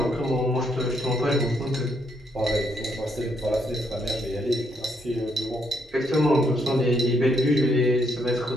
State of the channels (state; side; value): normal; both; correlation 0.74